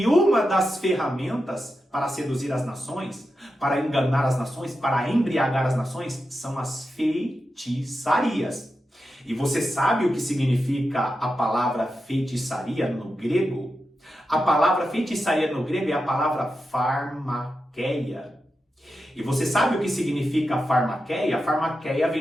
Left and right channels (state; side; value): normal; both; correlation 0.89